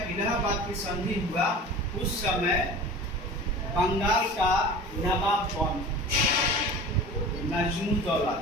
इलाहाबाद की संधि हुआ उस समय बंगाल का नवाब कौन? नजमुद्दौला।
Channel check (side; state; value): both; normal; correlation 0.37